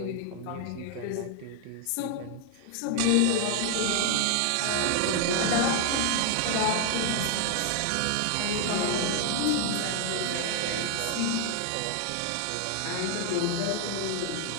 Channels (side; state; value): both; different; correlation 0.00